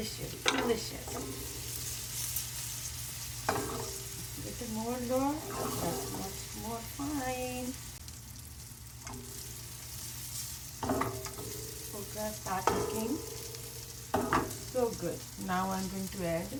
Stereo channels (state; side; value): identical; both; correlation 1.00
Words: delicious. Little more, Lord. That's much more fine. Okay, start cooking. So good. Now I'm going to add